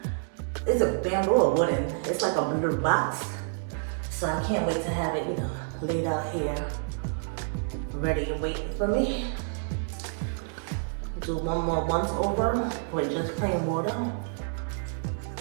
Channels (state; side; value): silent; left; digital silence